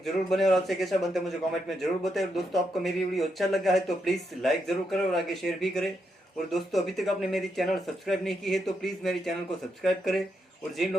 जरूर बने और आपसे कैसा बनता है मुझे कमेंट में जरूर बताएं। और दोस्तों आपको मेरी वीडियो अच्छा लगा है तो प्लीज़ लाइक जरूर करें और आगे शेयर भी करें। और दोस्तों अभी तक आपने मेरी चैनल सब्सक्राइब नहीं की है तो प्लीज़ मेरी चैनल को सब्सक्राइब करें। और जिन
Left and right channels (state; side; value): normal; both; correlation 0.81